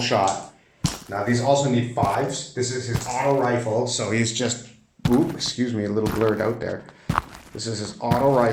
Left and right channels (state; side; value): identical; both; correlation 1.00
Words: Now these also need 5s. This is his auto rifle, so he's just, ooh, excuse me, a little blurred out there. This is his auto